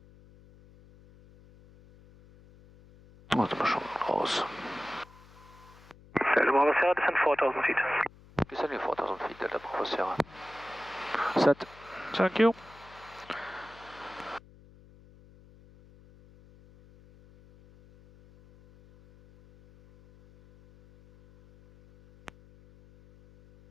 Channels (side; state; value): left; noise; hum, 24 dB below the sound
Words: Warte mal schon raus. Delta Bravo Sierra, descend 4000 feet. Descending 4000 feet, Delta Bravo Sierra. Set. Thank you.